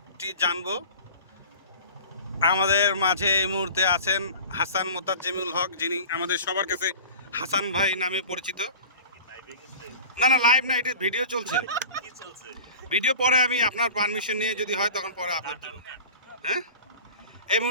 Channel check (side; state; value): both; inverted; correlation -0.38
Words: জানবো। আমাদের মাঝে এই মুহূর্তে আছেন হাসান মোতাজ্জেমুল হক, যিনি আমাদের সবার কাছে হাসান ভাই নামে পরিচিত। না না, লাইভ না, এটা ভিডিও চলছে। ভিডিও পরে আমি আপনার পারমিশন নিয়ে যদি হয় তখন পরে আপলোড দেবো। হ্যাঁ, এই